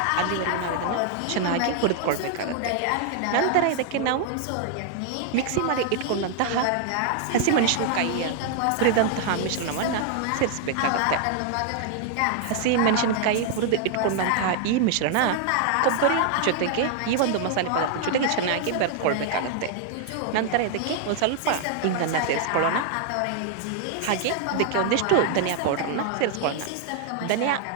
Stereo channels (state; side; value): different; both; correlation 0.00